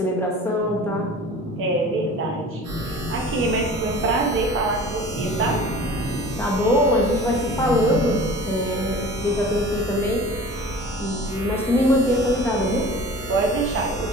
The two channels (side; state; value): both; normal; correlation 0.41